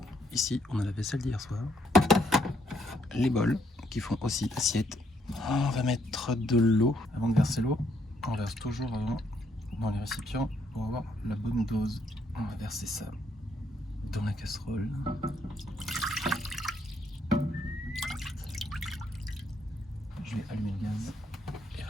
Ici, on a la vaisselle d'hier soir. Les bols qui font aussi assiette. On va mettre de l'eau. Avant de verser l'eau, on verse toujours avant dans les récipients pour avoir la bonne dose. On va verser ça dans la casserole. Je vais allumer le gaz et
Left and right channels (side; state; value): both; normal; correlation 0.72